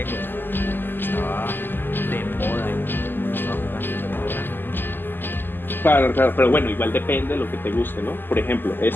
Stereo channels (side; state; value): right; late; 0.094 ms